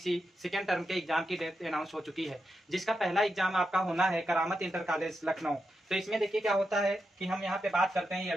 सेकेंड टर्म के एग्जाम की डेट अनाउंस हो चुकी है, जिसका पहला एग्जाम आपका होना है करामत इंटर कॉलेज लखनऊ। तो इसमें देखिए क्या होता है कि हम यहाँ पे बात करते हैं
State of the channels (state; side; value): normal; both; correlation 0.87